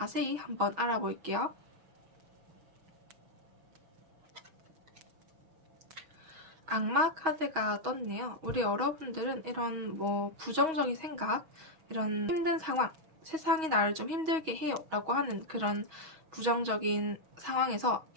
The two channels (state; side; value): late; left; 6.3 ms